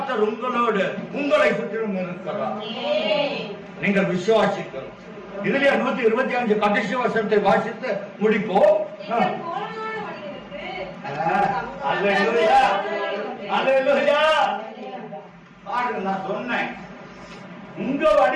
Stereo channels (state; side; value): identical; both; correlation 1.00